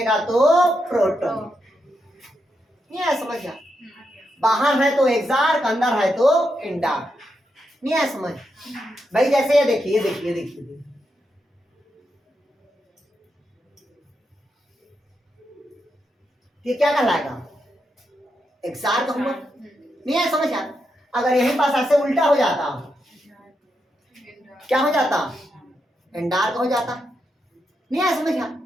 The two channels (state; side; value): normal; both; correlation 0.84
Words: तो प्रोटो। नहीं है समझ? बाहर है तो एक्सार्क, अंदर है तो इंडार्क। नहीं है समझ भाई? जैसे ये देखिए, देखिए देखिए, ये क्या कहलाएगा? एक्सार्क हुआ। नहीं है समझ? अगर यहीं पास ऐसे उल्टा हो जाता क्या हो जाता? इंडार्क हो जाता। नहीं है समझ?